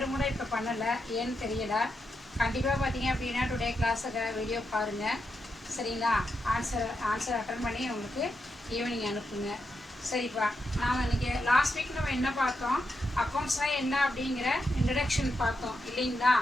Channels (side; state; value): both; normal; correlation 0.85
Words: கூட இப்போ பண்ணலை, ஏன்னு தெரியலை. கண்டிப்பாக பார்த்தீங்க அப்படின்னா டுடே கிளாஸை வீடியோ பாருங்கள். சரிங்களா? ஆன்சர் அட்டன் பண்ணி உங்களுக்கு ஈவினிங் அனுப்புங்க. சரிப்பா, நாம் இன்றைக்கி லாஸ்ட் வீக் நம்ம என்ன பார்த்தோம்? அக்கௌண்ட்ஸ்னால் என்ன அப்படிங்கிற இன்ட்ரடக்ஷன் பார்த்தோம் இல்லைங்களா?